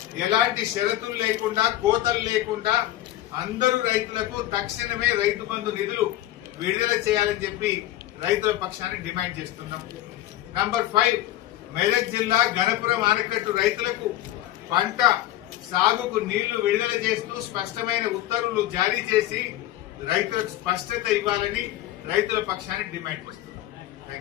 ఎలాంటి షరతులు లేకుండా, కోతలు లేకుండా అందరూ రైతులకు తక్షణమే రైతు బంధు నిధులు విడుదల చేయాలని చెప్పి రైతుల పక్షాన్ని డిమాండ్ చేస్తున్నాం. నంబర్ 5, మెదక్ జిల్లా గణపురం ఆనకట్టు రైతులకు పంట సాగుకు నీళ్లు విడుదల చేస్తూ స్పష్టమైన ఉత్తర్వులు జారీ చేసి రైతులకు స్పష్టత ఇవ్వాలని రైతుల పక్షాన్ని డిమాండ్ చేస్తున్నాం.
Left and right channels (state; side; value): quieter; right; 14.4 dB